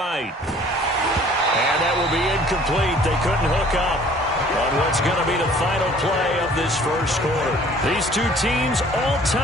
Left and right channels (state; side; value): normal; both; correlation 0.53